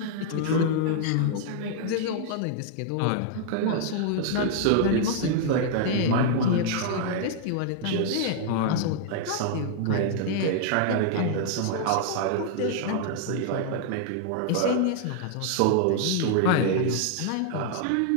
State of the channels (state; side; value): different; both; correlation -0.01